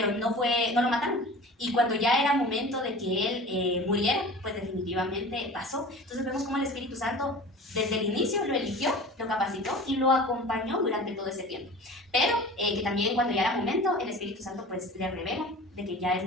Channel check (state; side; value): normal; both; correlation 0.39